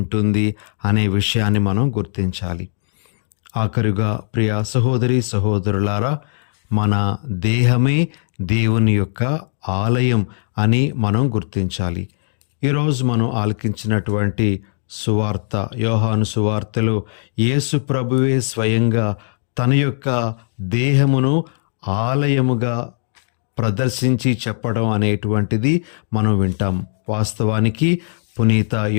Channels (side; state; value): right; silent; digital silence